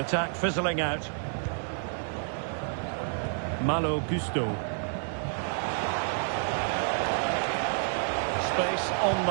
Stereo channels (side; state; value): left; silent; 58 dB below the other